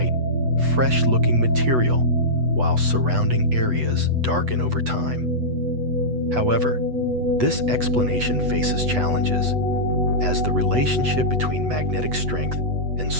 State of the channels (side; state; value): left; late; 8.1 ms